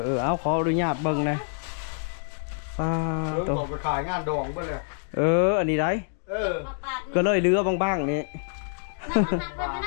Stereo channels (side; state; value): right; silent; digital silence